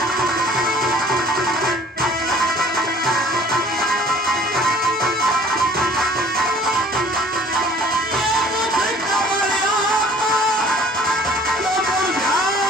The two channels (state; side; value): normal; both; correlation 0.52